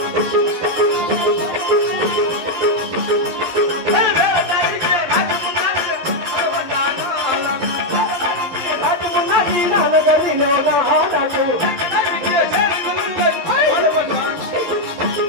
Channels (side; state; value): left; late; 11 ms